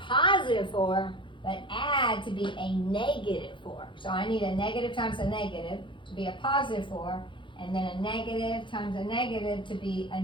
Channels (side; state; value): right; late; 0.24 ms